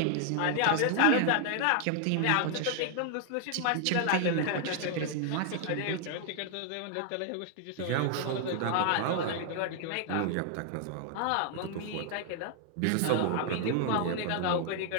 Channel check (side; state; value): both; different; correlation 0.00